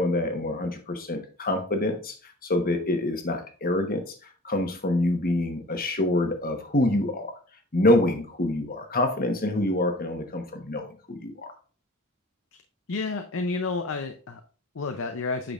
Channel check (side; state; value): both; normal; correlation 0.44